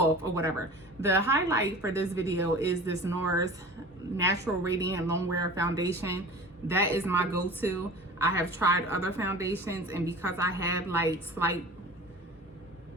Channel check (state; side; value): normal; both; correlation 0.39